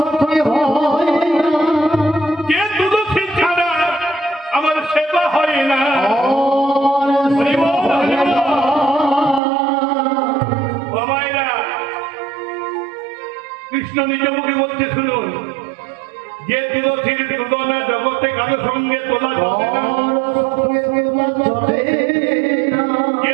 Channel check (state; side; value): drops out; left; at 9.4 s